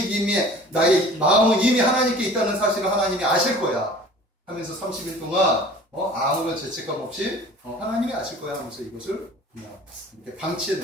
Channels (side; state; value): both; normal; correlation 0.45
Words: 마음은 이미 하나님께 있다는 사실을 하나님이 아실 거야. 하면서 30일 동안 아무런 죄책감 없이 하나님이 아실 거야 하면서 이것을 그냥 이렇게 방치해